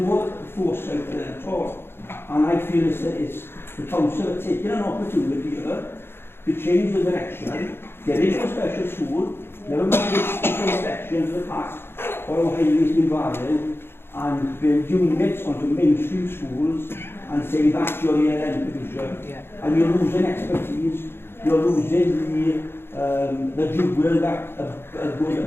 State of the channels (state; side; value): late; right; 0.11 ms